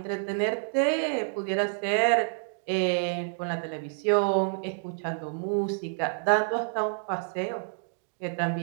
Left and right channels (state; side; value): silent; left; digital silence